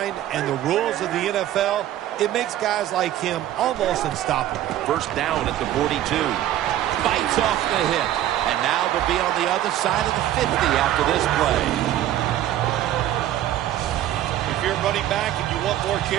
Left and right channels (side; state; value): left; quieter; 12.7 dB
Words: and the rules of the NFL, it makes guys like him almost unstoppable. First down at the 42. Bites off the hit. And now they'll be on the other side of the 50 after this play. If you're running back and you want more